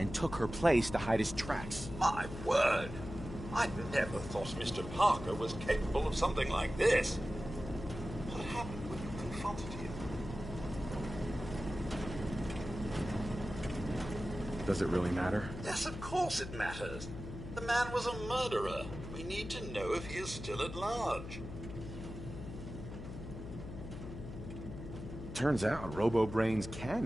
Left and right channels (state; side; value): noise; left; hum, 9 dB below the sound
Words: took her place to hide his tracks. My word! I never thought Mr. Parker was capable of something like this. What happened when you confronted him? Does it really matter? Yes, of course it matters. The man was a murderer. We need to know if he is still at large. Turns out Robo-Brains can